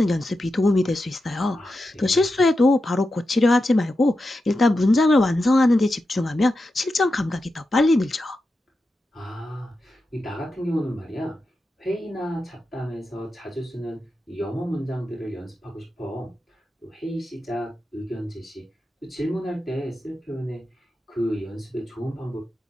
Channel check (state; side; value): normal; both; correlation 0.90